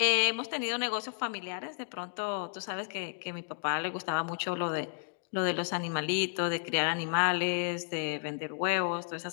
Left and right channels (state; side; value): silent; right; digital silence